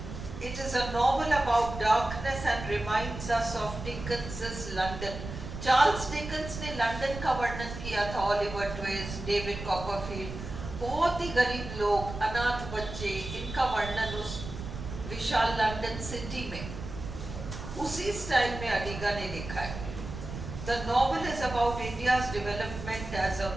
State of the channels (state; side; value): noise; right; rumble, 9 dB below the sound